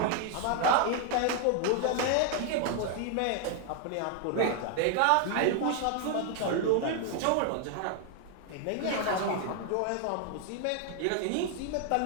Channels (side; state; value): both; different; correlation 0.00